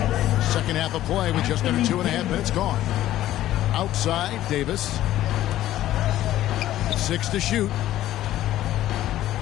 Second half of play with just under 2.5 minutes gone. Outside, Davis. 6 to shoot.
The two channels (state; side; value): quieter; right; 13.7 dB